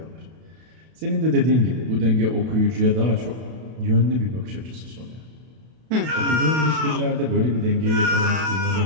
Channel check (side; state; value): left; late; 32 ms